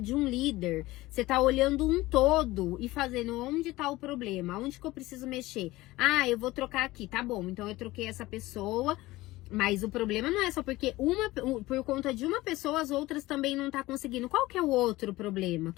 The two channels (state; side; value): quieter; right; 18.7 dB